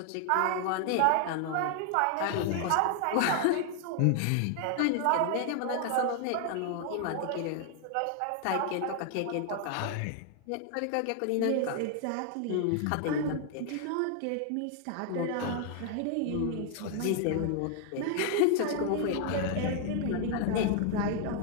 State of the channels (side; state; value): both; different; correlation 0.00